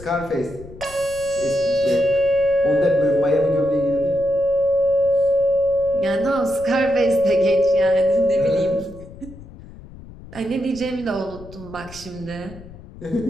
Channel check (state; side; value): noise; left; rumble, 18 dB below the sound